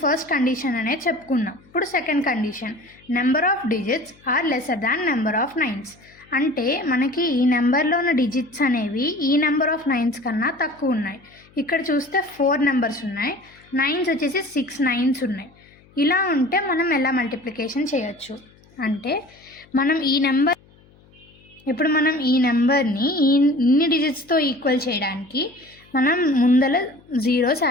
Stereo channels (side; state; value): left; noise; hum, 28 dB below the sound